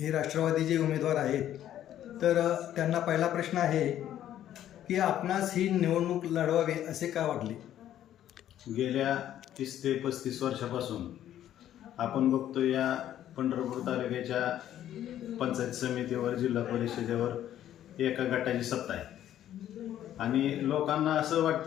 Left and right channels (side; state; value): right; quieter; 11.6 dB